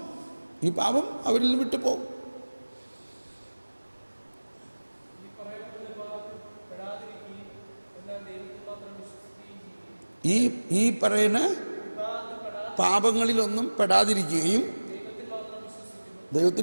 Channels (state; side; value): inverted; both; correlation -1.00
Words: ഈ പാപം അവരിൽ നിന്ന് വിട്ടുപോകും. ഈ പറയുന്ന പാപങ്ങളിലൊന്നും പെടാതിരിക്കുകയും